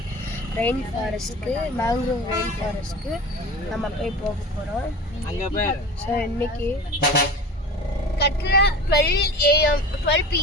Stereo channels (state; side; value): normal; both; correlation 0.35